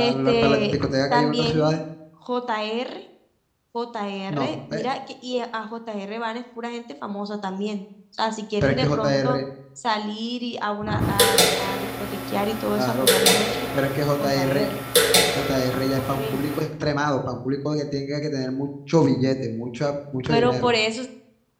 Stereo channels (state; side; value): identical; both; correlation 1.00